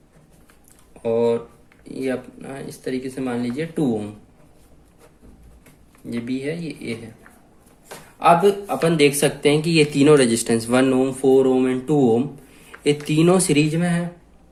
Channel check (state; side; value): identical; both; correlation 1.00